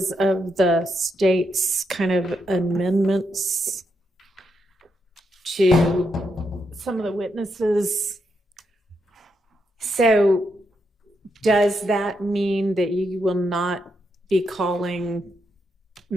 of the state's kind of amendments to some of the witnesses. So does that mean that you will not be calling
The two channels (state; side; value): normal; both; correlation 0.81